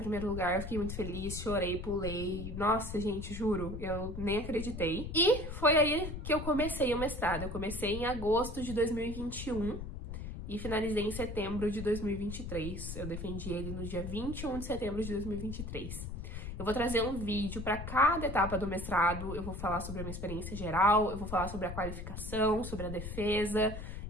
lugar, eu fiquei muito feliz, chorei, pulei. Nossa, gente, juro, eu nem acreditei. E foi aí que eu comecei o mestrado. Eu comecei em agosto de 2021 e finalizei em setembro de 2023. Eu defendi ele no dia 21 de setembro de 2023. Eu vou trazer um vídeo para cada etapa do mestrado, eu vou falar sobre a minha experiência geral, eu vou falar sobre a qualificação, sobre a defesa,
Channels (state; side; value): noise; left; rumble, 7 dB below the sound